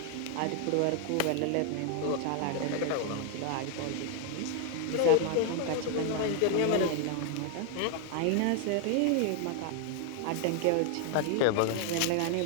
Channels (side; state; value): both; different; correlation 0.00